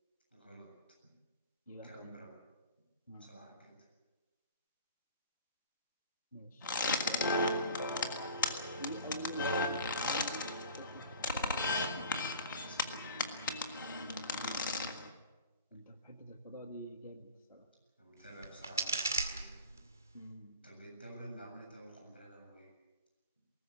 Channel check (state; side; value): inverted; both; correlation -0.38